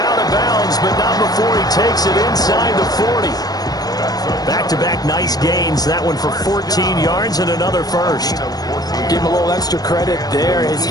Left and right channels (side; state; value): right; late; 0.19 ms